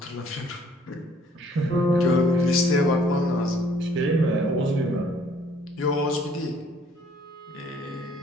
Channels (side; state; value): both; normal; correlation 0.59